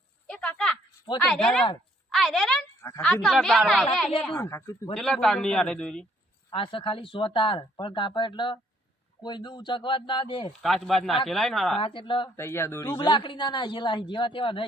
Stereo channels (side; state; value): both; normal; correlation 0.65